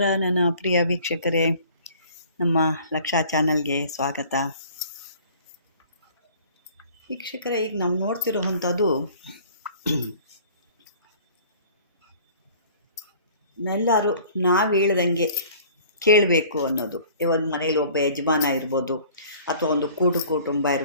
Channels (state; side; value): inverted; both; correlation -0.50